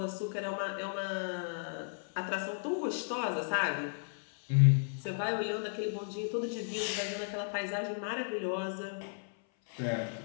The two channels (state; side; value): silent; right; 55 dB below the other